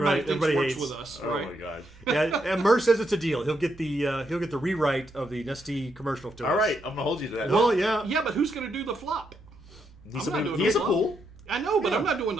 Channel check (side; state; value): left; noise; rumble, 29 dB below the sound